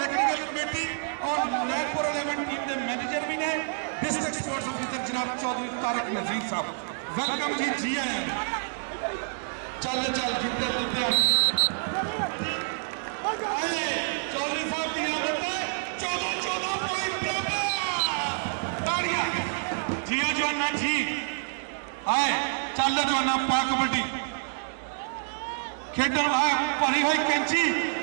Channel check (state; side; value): silent; left; digital silence